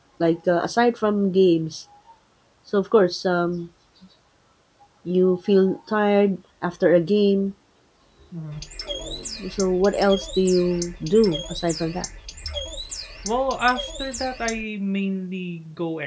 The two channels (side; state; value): both; identical; correlation 1.00